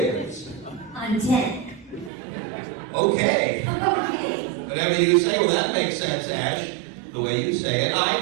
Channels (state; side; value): drops out; left; at 2.1 s